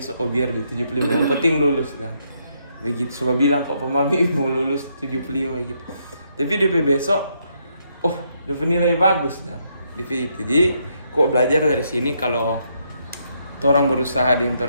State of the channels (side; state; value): both; inverted; correlation -0.76